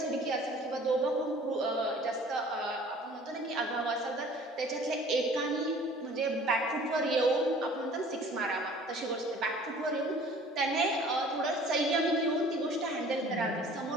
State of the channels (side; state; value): both; normal; correlation 0.50